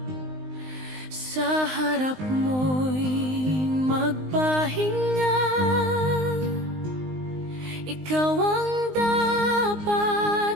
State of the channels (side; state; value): left; late; 19 ms